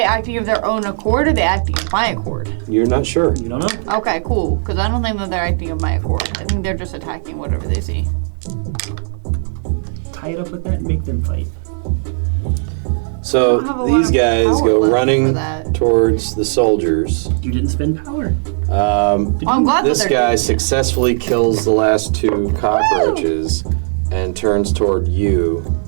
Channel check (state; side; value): silent; left; 68 dB below the other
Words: acting of their own accord or are they acting of my accord? You're not sure. You don't know. Okay, cool. Because I don't think that they're acting of my accord. I think they're just attacking whatever they see. Tie it up with that and make them fight. So don't have a lot these of guys power go left for running that. towards the soldiers. You didn't spend power. I'm glad This that they're guy doing it. successfully kills the last 2 cockroaches and turns toward you.